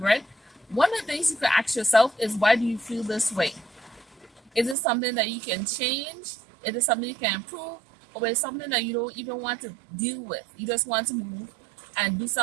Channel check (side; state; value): left; drops out; at 4.8 s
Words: one of the things you can ask yourself is why do you feel this way? Is it something that you can change? Is it something you can improve? Or is it something that you don't even want to deal with? You just want to move and do